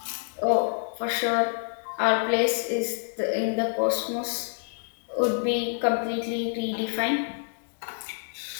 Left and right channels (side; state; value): right; silent; 60 dB below the other